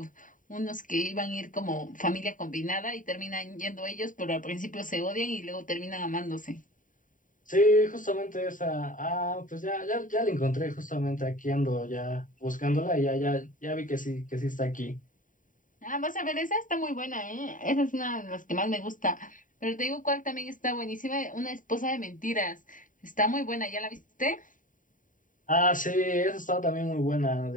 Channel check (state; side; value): late; right; 0.38 ms